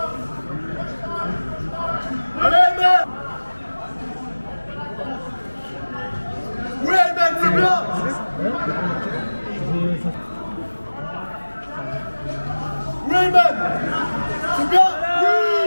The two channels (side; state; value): both; inverted; correlation -1.00